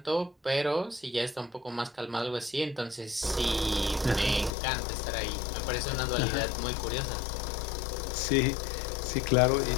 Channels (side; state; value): right; drops out; at 4.5 s